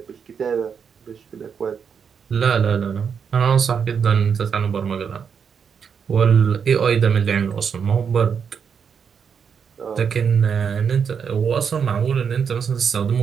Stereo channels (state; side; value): quieter; left; 6.8 dB